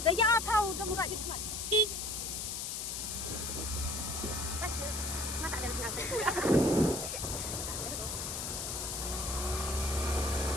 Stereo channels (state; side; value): noise; left; hiss, 4 dB below the sound